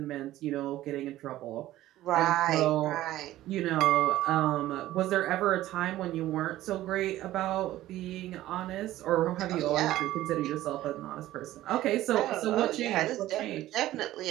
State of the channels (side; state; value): left; quieter; 14.9 dB